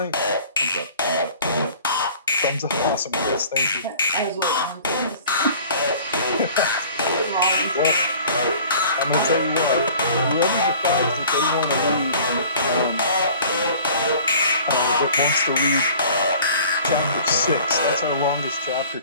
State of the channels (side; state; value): both; inverted; correlation -0.47